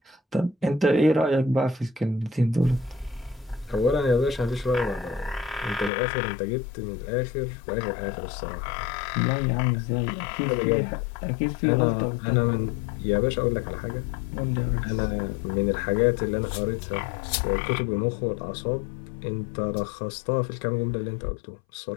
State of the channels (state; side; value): drops out; right; at 5.9 s